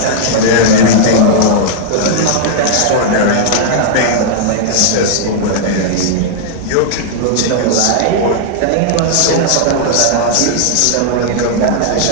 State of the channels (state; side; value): different; both; correlation -0.01